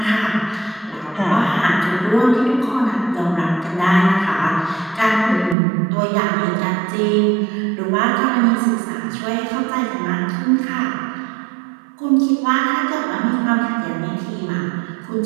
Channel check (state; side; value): drops out; left; at 5.6 s